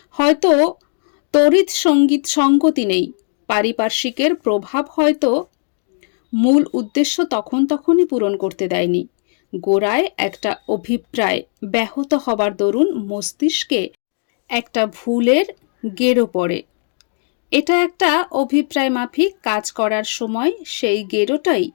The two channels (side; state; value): right; silent; 67 dB below the other